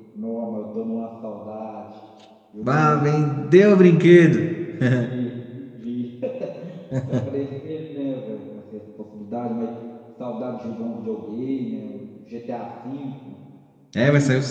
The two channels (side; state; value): both; identical; correlation 1.00